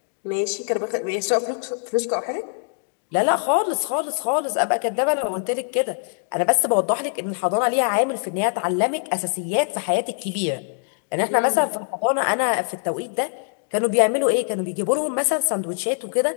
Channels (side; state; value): right; silent; digital silence